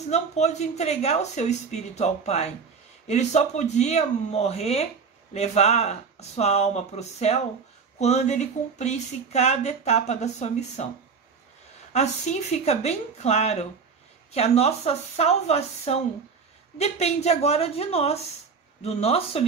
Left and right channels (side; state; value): left; quieter; 5.5 dB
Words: não pôde entregar o seu espírito ao Pai. Ele só podia morrer, levar a sua alma para o céu, quando ele cumprisse cada etapa da sua missão. Assim fica bem claro que a nossa salvação depende agora de nós, do nosso